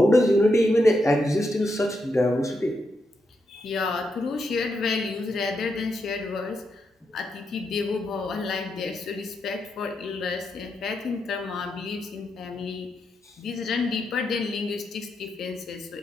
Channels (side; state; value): both; normal; correlation 0.83